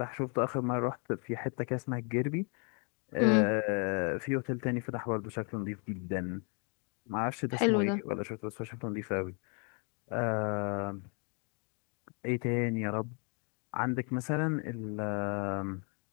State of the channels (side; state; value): right; quieter; 37.2 dB